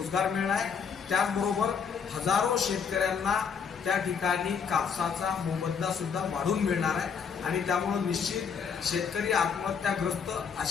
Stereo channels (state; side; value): quieter; right; 6.5 dB